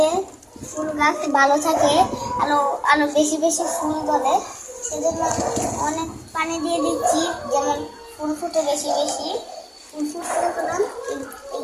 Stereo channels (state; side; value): identical; both; correlation 1.00